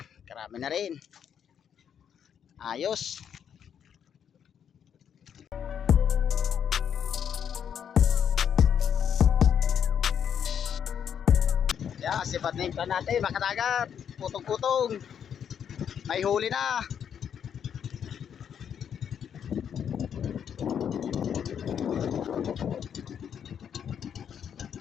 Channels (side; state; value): right; quieter; 8.3 dB